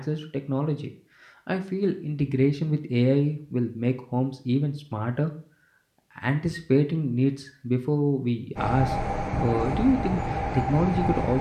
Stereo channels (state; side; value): identical; both; correlation 1.00